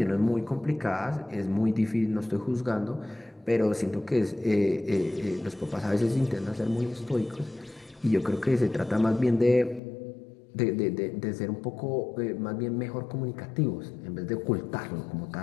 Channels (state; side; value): drops out; right; at 9.8 s